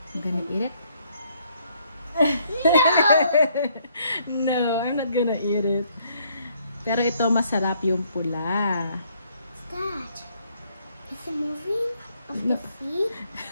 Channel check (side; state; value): both; inverted; correlation -0.68